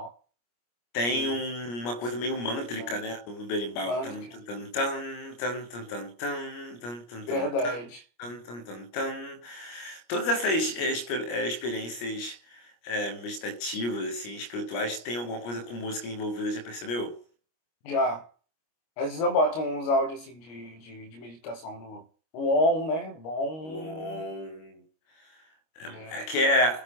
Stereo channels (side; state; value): right; late; 25 ms